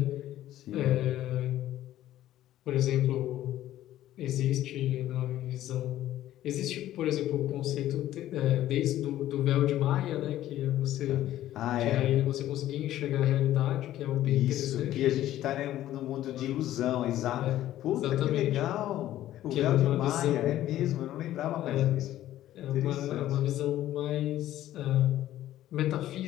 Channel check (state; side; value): quieter; right; 13.4 dB